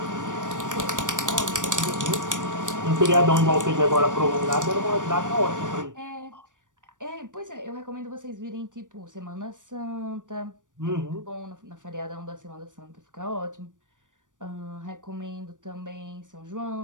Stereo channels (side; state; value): left; late; 0.87 ms